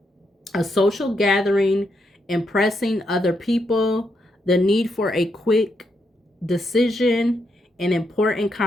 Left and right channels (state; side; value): normal; both; correlation 0.80